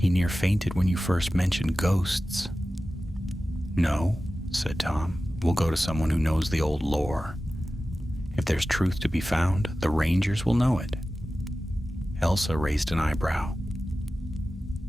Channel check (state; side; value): normal; both; correlation 0.95